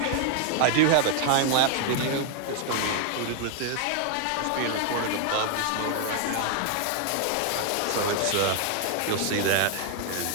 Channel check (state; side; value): different; both; correlation 0.00